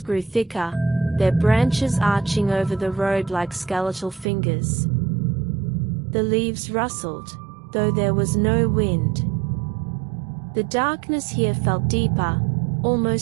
grew thicker, their branches arching over the road like skeletal fingers. The leaves rustled, though there was no wind. The darkness here felt deeper,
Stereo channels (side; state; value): left; drops out; at 4.2 s